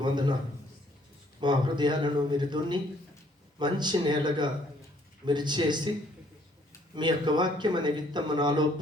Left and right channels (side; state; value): both; normal; correlation 0.64